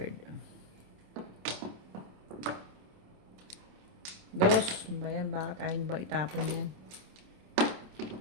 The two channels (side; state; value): left; late; 27 ms